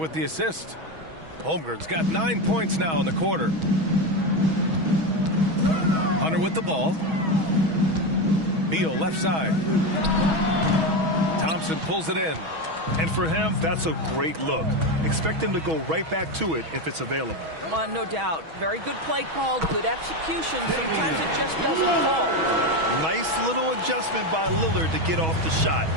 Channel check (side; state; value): left; late; 6.2 ms